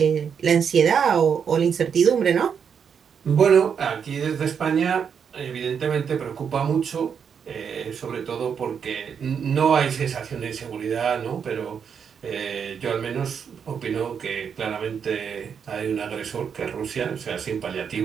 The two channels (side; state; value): left; quieter; 7.1 dB